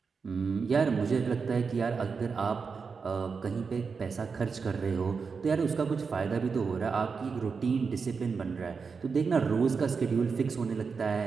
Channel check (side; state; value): left; quieter; 5.3 dB